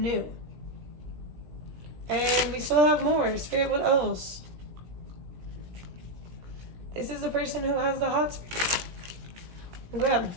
new. And we still have more. Spirit, what else? This is the person who has the hots for you. Grab.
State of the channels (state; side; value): late; left; 17 ms